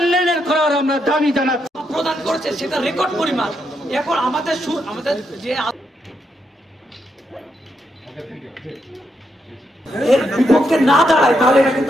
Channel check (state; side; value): normal; both; correlation 0.80